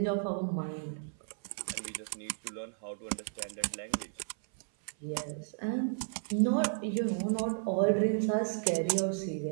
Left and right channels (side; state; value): left; silent; 55 dB below the other